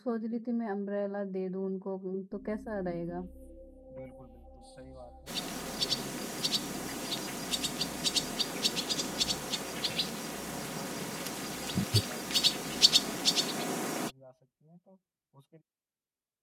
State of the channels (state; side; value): identical; both; correlation 1.00